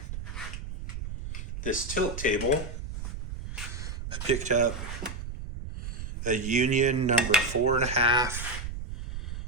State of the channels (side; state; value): right; noise; rumble, 7 dB below the sound